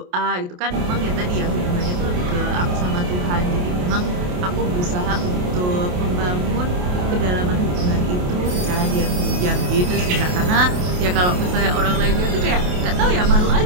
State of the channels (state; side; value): late; left; 28 ms